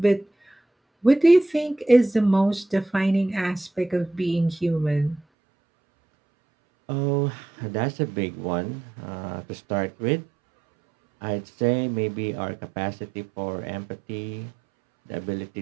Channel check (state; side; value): drops out; left; at 5.2 s